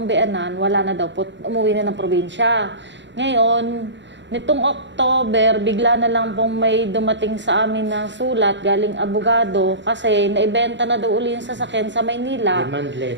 beanan, wala na daw po, umuwi na ng probinsya. Ngayon, nitong October, bigla na lang pong may dumating sa amin na sulat galing abogado kasi naibenta na daw uli yung sasakyan sa Maynila. Demand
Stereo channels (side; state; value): left; late; 0.53 ms